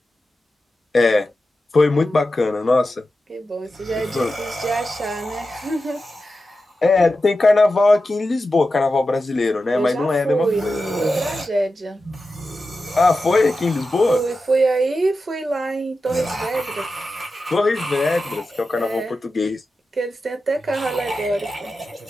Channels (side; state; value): both; normal; correlation 0.92